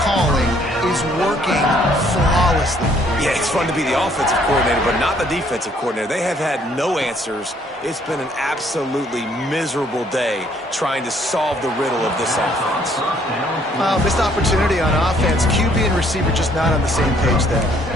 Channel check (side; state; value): both; normal; correlation 0.64